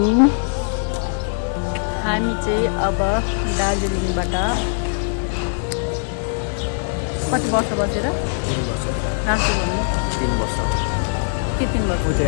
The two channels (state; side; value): silent; right; 65 dB below the other